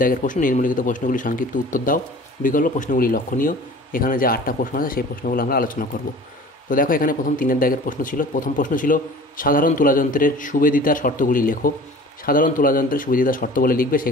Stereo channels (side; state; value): both; normal; correlation 0.43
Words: দাগের প্রশ্ন, নিম্নলিখিত প্রশ্নগুলি সংক্ষিপ্ত উত্তর দাও, বিকল্প প্রশ্নগুলি লক্ষণীয়। এখানে যে 8টা প্রশ্ন আছে সেই প্রশ্নগুলো আমরা আলোচনা করব। তো দেখো এখানে প্রথম 3-এর দাগের প্রশ্ন ছিল। প্রথম প্রশ্ন ছিল সাধারণ তুলাযন্ত্রের সুবেদিতার শর্তগুলি লেখো। সাধারণ তুলাযন্ত্রের সুবেদিতার শর্ত বলে লিখবে,